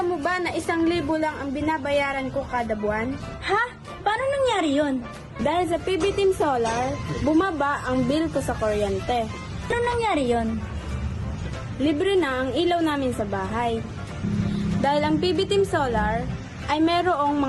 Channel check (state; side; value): identical; both; correlation 1.00